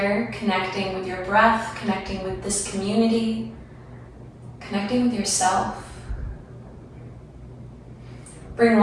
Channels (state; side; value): identical; both; correlation 1.00